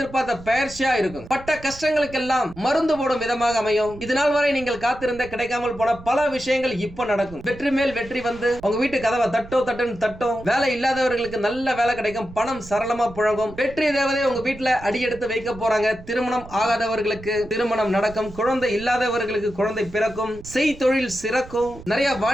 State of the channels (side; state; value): right; noise; rumble, 17 dB below the sound